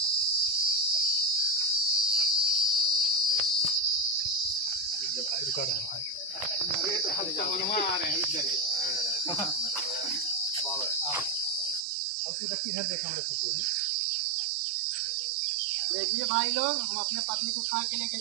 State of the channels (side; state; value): left; drops out; at 11.9 s